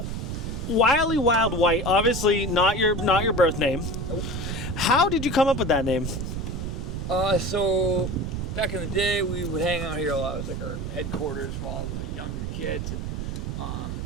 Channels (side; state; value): right; noise; rumble, 4 dB below the sound